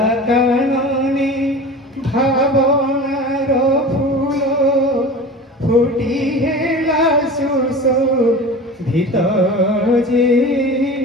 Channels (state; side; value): normal; both; correlation 0.35